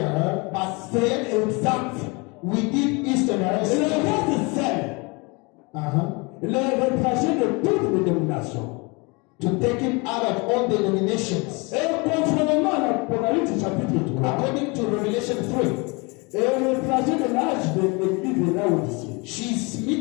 her, but C'est exact. we did Et Easterners. le reste, c'est le retraché de toutes les dénominations. To take him out of all denominations. Et conformément à l'Apocalypse chapitre 3, According to Revelation 3, et le trajet de l'âge de l'église de Laodicée, she's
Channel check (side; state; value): right; quieter; 28.7 dB